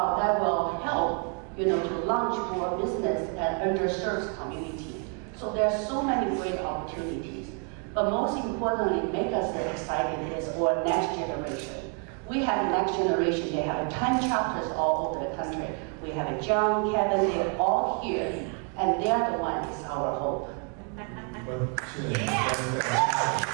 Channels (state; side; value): quieter; left; 39.0 dB